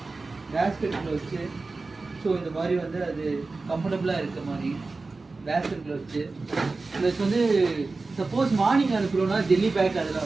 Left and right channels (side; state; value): left; quieter; 3.7 dB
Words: பேஸ்கெட்டில் வச்சு ஸோ இந்த மாதிரி வந்து அது கம்ஃபர்டபுளாக இருக்க மாதிரி பேஸ்கெட்டில் வச்சு ப்ளஸ் வந்து சப்போஸ் மார்னிங் அனுப்புகிறோன்னா ஜெல்லி பேக் அதெல்லாம்